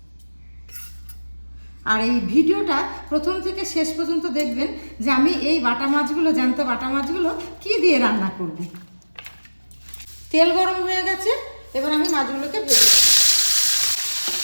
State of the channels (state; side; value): inverted; both; correlation -1.00